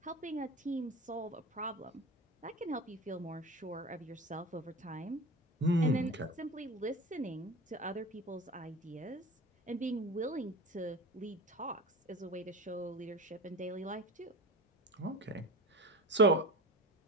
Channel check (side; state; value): both; normal; correlation 0.31